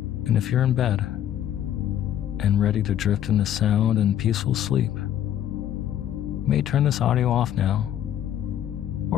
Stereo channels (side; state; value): right; quieter; 10.9 dB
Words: and if you're in bed and ready to drift into sound and peaceful sleep, you may turn this audio off now,